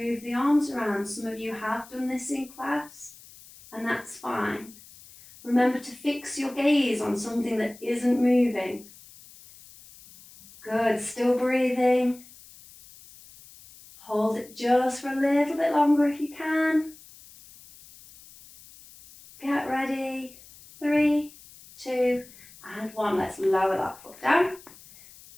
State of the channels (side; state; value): left; noise; hiss, 21 dB below the sound